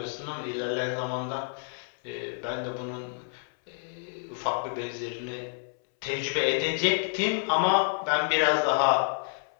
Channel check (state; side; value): silent; right; 59 dB below the other